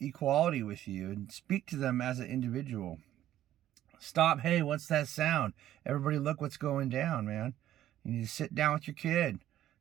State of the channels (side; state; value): left; quieter; 12.6 dB